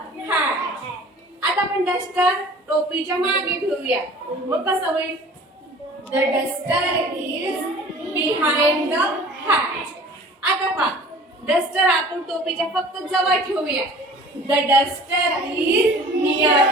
hat. आता आपण डस्टर टोपीच्या मागे ठेवूया. मग कसं होईल? The duster is behind the hat. आता पहा, डस्टर आपण टोपीच्या फक्त जवळ ठेवूया. The duster is near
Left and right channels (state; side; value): normal; both; correlation 0.46